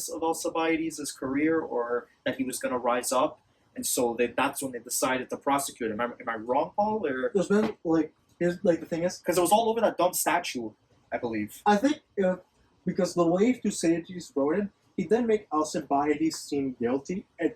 of Alcibiades' career, or that he was going to rise up, and so that's when they decided to prosecute him. Am I wrong, Paul? Or There's been here's the thing is, because it was all over that dumb statue, I believe. I think because the way Thucydides wrote it, he didn't make Alcibiades seem guilty.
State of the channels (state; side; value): identical; both; correlation 1.00